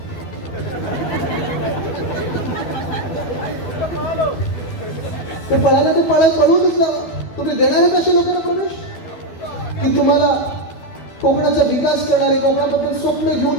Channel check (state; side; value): late; right; 12 ms